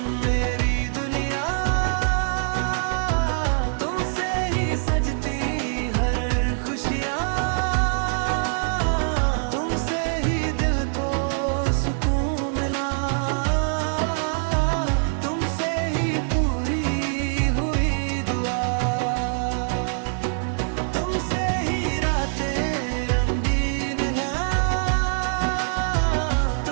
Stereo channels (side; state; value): left; silent; digital silence